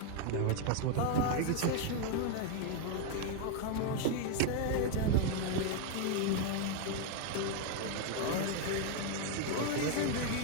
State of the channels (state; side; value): different; both; correlation 0.01